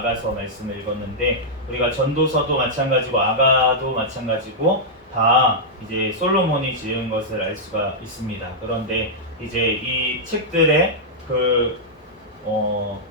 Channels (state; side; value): normal; both; correlation -0.09